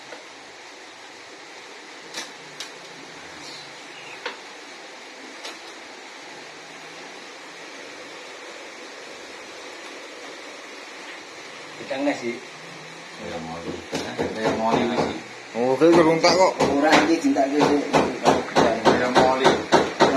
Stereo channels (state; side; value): identical; both; correlation 1.00